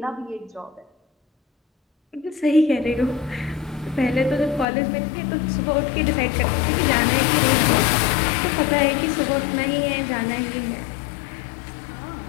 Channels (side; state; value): right; drops out; at 4.7 s